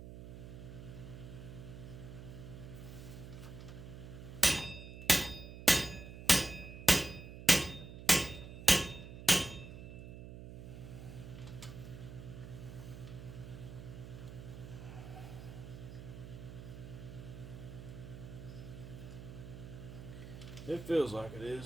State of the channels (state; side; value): noise; right; hum, 11 dB below the sound